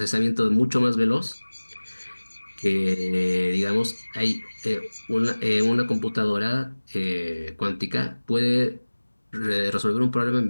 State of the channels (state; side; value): inverted; both; correlation -1.00